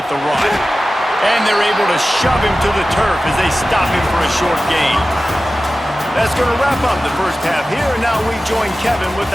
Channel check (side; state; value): both; normal; correlation 0.95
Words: the run. And they're able to shove him to the turf as they stop him for a short gain. That's going to wrap up the first half here, and now we join Kevin with